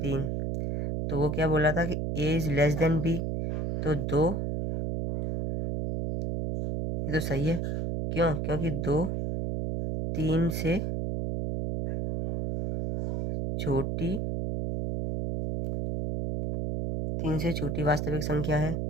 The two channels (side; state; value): right; noise; hum, 1 dB below the sound